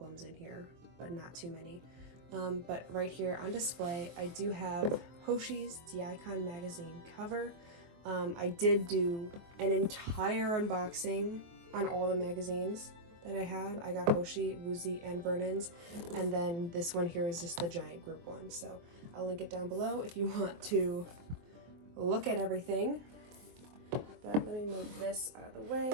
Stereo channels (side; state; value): left; late; 23 ms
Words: in here, but not too many. But right here on display, I do have Hoshi's The Icon magazine cover. I did do an entire unboxing on all the magazines that I have. I got Hoshi, Woozy, and Vernon's, and then this one here is just the giant group one. So I'll link it down below if you want to look at everything. But let me move this out of the